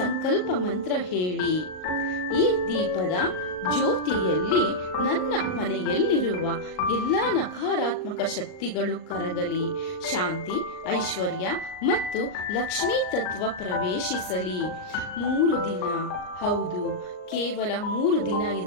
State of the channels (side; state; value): right; late; 38 ms